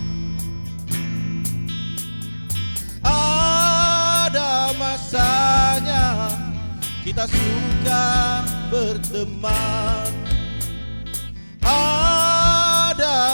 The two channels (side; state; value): both; inverted; correlation -1.00